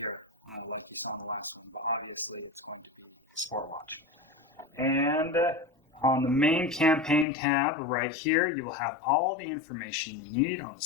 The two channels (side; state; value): right; drops out; at 7.2 s